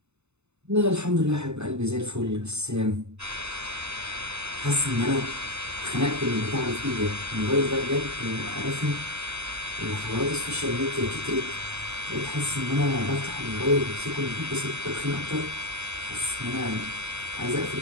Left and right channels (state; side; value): late; left; 0.81 ms